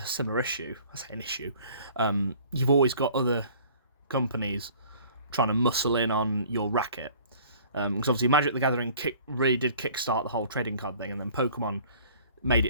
similar issue. I say an issue. You've always got other companies trying to muscle in on your racket. Because obviously Magic the Gathering really did kickstart the whole trading card thing, and then Pokemon made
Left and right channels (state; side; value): inverted; both; correlation -0.51